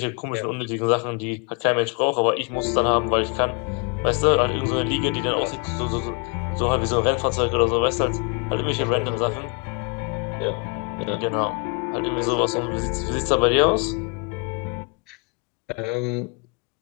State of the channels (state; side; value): quieter; right; 32.6 dB